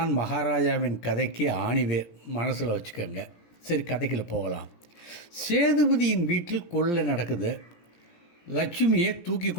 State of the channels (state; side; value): late; right; 17 ms